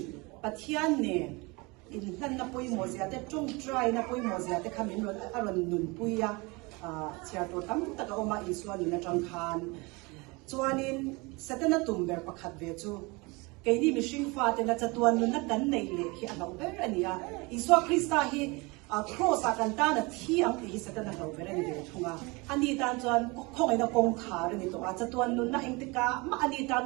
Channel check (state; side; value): quieter; left; 26.2 dB